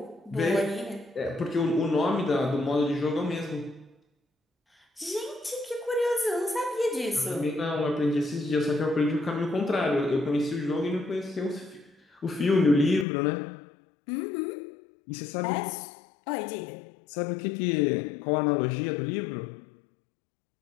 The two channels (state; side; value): drops out; right; at 13.1 s